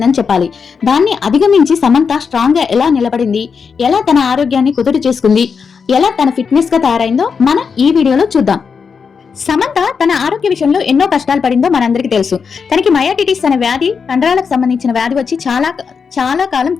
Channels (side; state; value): right; quieter; 5.9 dB